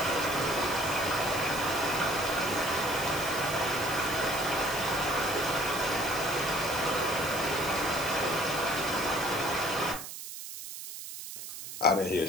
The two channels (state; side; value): noise; right; hiss, 10 dB below the sound